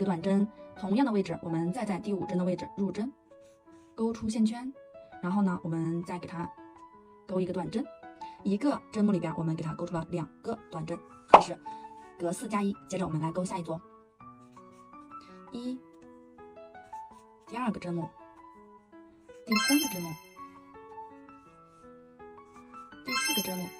短针，同样的位置，我们再在第5针的位置入针，勾出线圈，然后呢，我们再给它勾1个短针，一个针目里边我们给它勾出了2个短针，这是隔4加1。接着我们来勾下一组，1，第2个针目，第3个针目，第4个针目。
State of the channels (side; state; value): both; identical; correlation 1.00